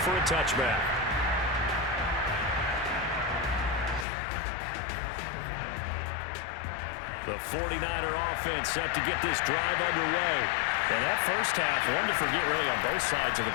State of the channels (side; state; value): right; drops out; at 4.0 s